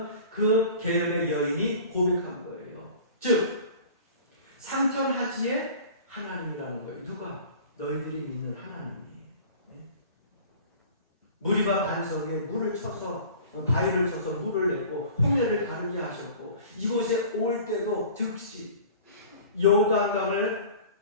그 계열의 여인이 고백한 거예요. 즉 상천하지의 하나님이라는 거예요. 누가? 너희들이 믿는 하나님이. 무리가 반석에 물을 쳐서 바위를 쳐서 물을 냈고 홍해를 가르게 하셨고 이곳에 올 때도 즉시 요단강을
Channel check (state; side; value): inverted; both; correlation -0.43